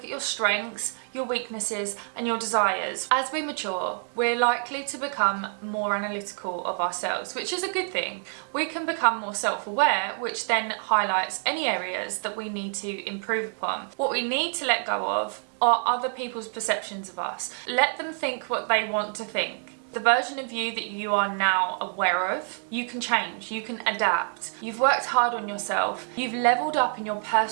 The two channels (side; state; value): left; silent; 57 dB below the other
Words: at your strengths, your weaknesses, and your desires. As we mature, we're likely to become more analytical of ourselves, which is a good thing. We can become more self-aware, which then highlights any areas that we need to improve upon. What we need to let go of are other people's perceptions of us. Let them think what they want to think. The version of you that you are now aware of, you can change, you can adapt. You've worked hard on yourself, you've leveled up in your